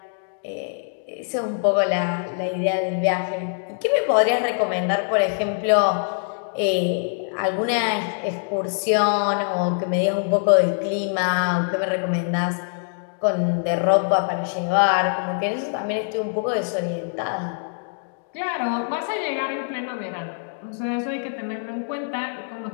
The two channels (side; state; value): right; silent; digital silence